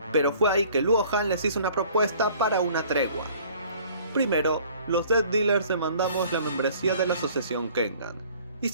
Pero fue ahí que Luohan les hizo una propuesta para una tregua. Primero, los Death Dealers demandamos la membresía de la asociación Kengan. Y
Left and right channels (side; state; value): both; inverted; correlation -0.53